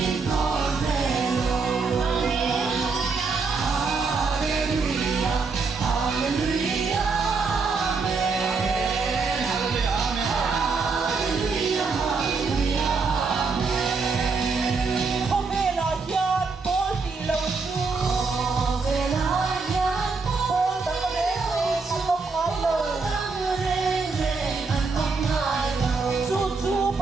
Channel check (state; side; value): quieter; left; 4.5 dB